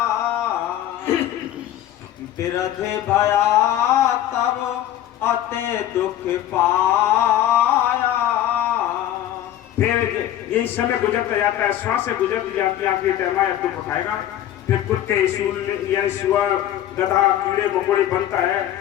बिरध भया तब अते दुख पाया। फिर यही समय गुजरता जाता है, श्वासें गुजरती जाती है, आखिरी टाइम आया दुख उठाएगा। फिर कुत्ते, सूअर, सुअर, गधा, कीड़े मकोड़े बनता है,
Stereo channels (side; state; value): right; quieter; 12.2 dB